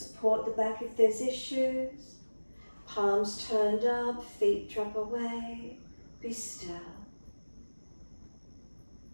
the back if there's issues. Palms turned up, feet drop away. Be still.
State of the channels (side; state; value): both; inverted; correlation -1.00